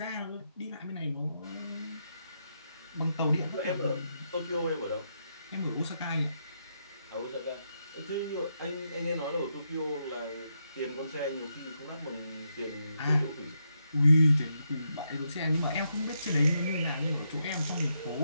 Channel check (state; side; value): inverted; both; correlation -0.81